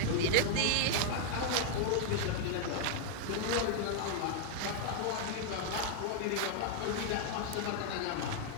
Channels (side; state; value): both; different; correlation 0.00